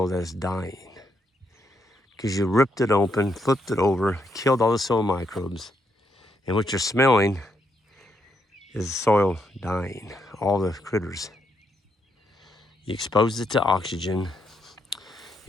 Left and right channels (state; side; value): normal; both; correlation 0.77